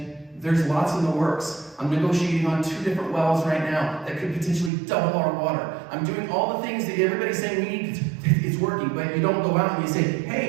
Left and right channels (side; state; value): left; drops out; at 4.7 s